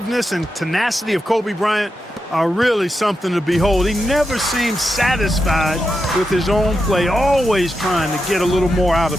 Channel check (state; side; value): normal; both; correlation 0.88